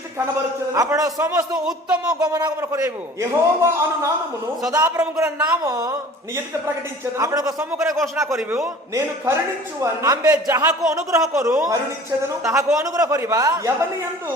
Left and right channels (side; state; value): both; normal; correlation 0.45